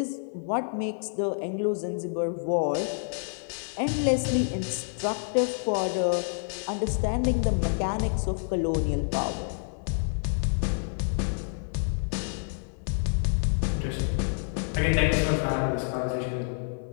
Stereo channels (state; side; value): silent; right; 59 dB below the other